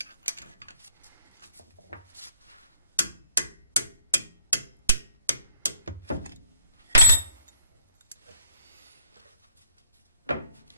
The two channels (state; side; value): inverted; both; correlation -0.58